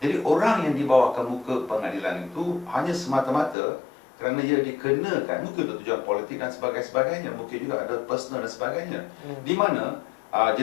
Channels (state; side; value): drops out; right; at 3.6 s